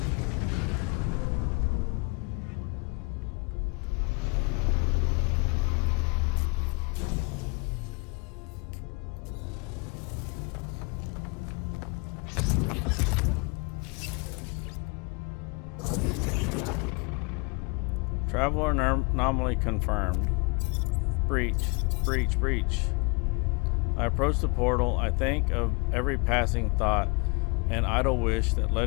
Traveler anomaly confirmed. Breach, breach, breach. I approach the portal. I think of every passing thought and idle wish that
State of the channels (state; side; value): quieter; right; 29.4 dB